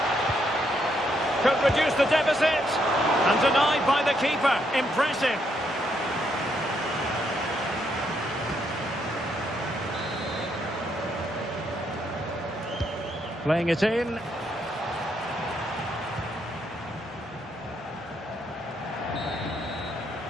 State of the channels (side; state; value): both; normal; correlation 0.76